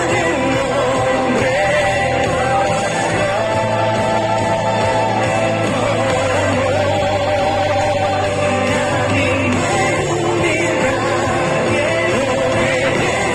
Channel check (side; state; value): both; identical; correlation 1.00